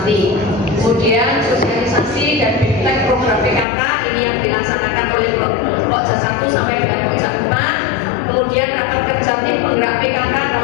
Kemudian sosialisasi dan bimbingan program PKK ini yang dilaksanakan oleh pojok 1 sampai dengan pojok 4. Kemudian rapat kerja tim penggerak PKK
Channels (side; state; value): right; drops out; at 3.7 s